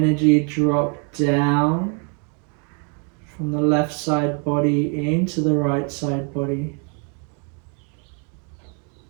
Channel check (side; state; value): left; quieter; 38.5 dB